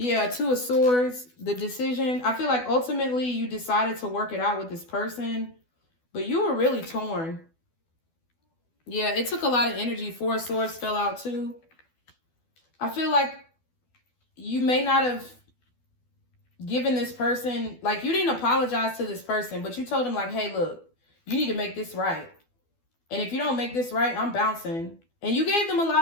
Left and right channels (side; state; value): right; late; 12 ms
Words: Two of Swords, the decision. I feel like ultimately you decided to work it out with this person, but you were really torn. Yeah, it took a lot of energy. Four of Swords fell out too. I feel like you may not have given this person, like, you didn't apologize to this person, but you told him, like, hey, look, you need to make this right. And if you don't make this right, I'm bouncing. And you gave them a